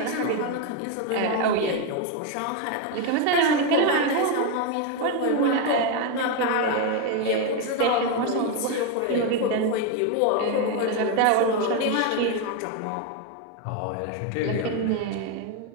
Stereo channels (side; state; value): both; different; correlation 0.02